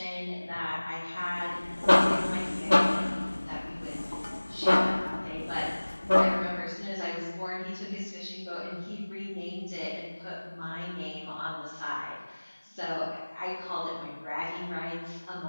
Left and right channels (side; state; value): both; inverted; correlation -1.00